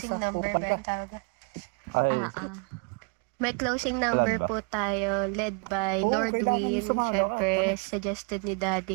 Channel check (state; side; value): quieter; left; 35.1 dB